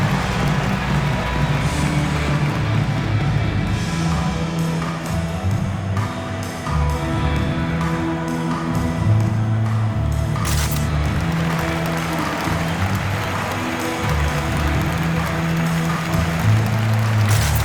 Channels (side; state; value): both; identical; correlation 1.00